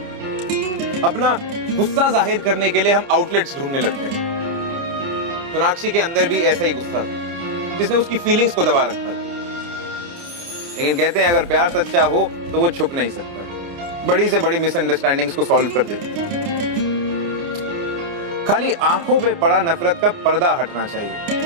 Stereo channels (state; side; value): late; left; 29 ms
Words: अपना गुस्सा जाहिर करने के लिए हम आउटलेट्स ढूंढने लगते हैं। सोनाक्षी के अंदर भी ऐसा ही गुस्सा था जिसने उसकी फीलिंग्स को दबा रखा था। लेकिन कहते हैं अगर प्यार सच्चा हो तो वो छुप नहीं सकता। बड़ी से बड़ी मिसअंडरस्टैंडिंग्स को सॉल्व कर देती है। खाली आंखों पे पड़ा नफरत का पर्दा हटना